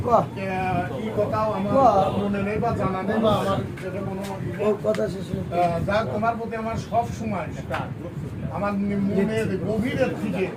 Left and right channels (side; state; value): both; identical; correlation 1.00